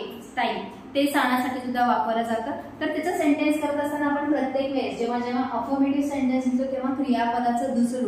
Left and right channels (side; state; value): both; identical; correlation 1.00